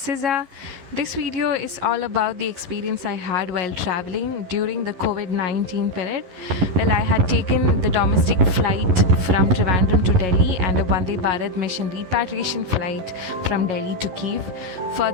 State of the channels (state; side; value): late; left; 11 ms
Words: This video is all about the experience I had while traveling during the COVID-19 period. Well, I had taken the domestic flight from Trivandrum to Delhi and a Vande Bharat mission repatriation flight from Delhi to Kyiv.